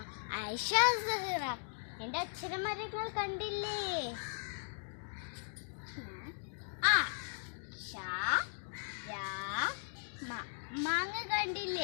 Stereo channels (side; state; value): right; silent; digital silence